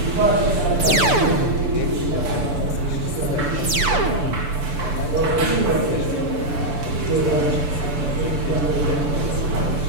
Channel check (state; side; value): late; left; 6.8 ms